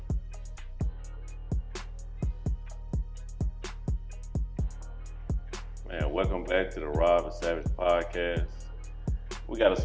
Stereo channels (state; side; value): identical; both; correlation 1.00